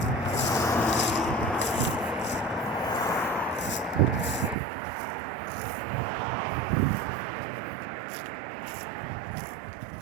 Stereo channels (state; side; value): drops out; left; at 4.5 s